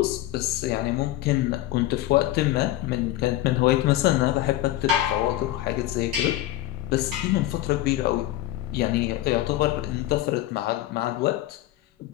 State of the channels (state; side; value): quieter; right; 14.8 dB